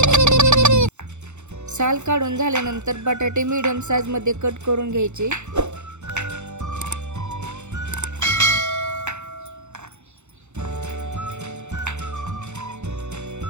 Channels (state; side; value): late; left; 0.83 ms